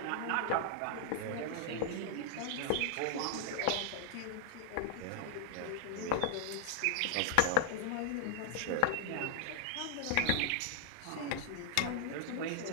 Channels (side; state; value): both; different; correlation -0.01